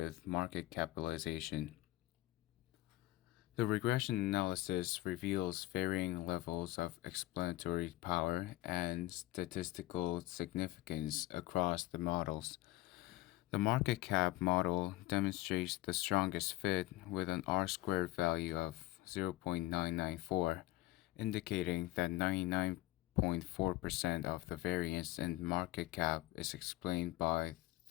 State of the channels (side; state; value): right; quieter; 17.7 dB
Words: market capitalization. The regression analysis reveals varying levels of explanatory power and statistical significance across the models. The market cap model demonstrates the strongest fit with an R squared value of 0.994, indicating that 99.4% of the variance in market cap is explained by